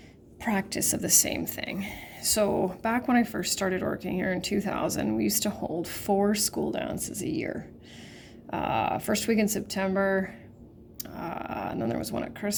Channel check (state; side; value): identical; both; correlation 1.00